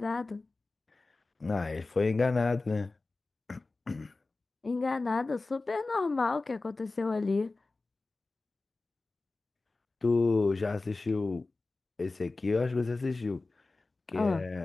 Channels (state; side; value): quieter; right; 3.4 dB